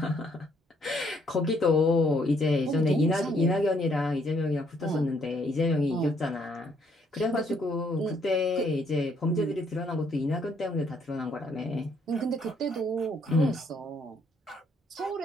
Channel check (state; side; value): normal; both; correlation 0.68